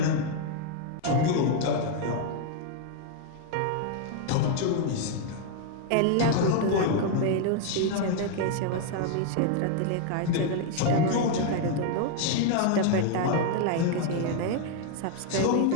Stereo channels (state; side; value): different; both; correlation 0.00